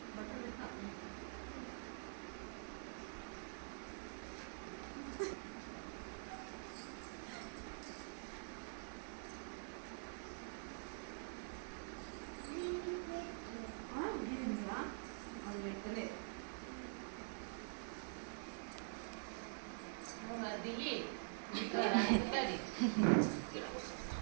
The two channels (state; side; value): silent; left; digital silence